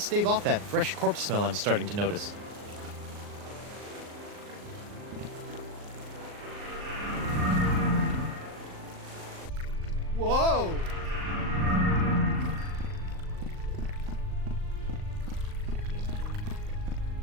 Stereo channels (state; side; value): late; left; 39 ms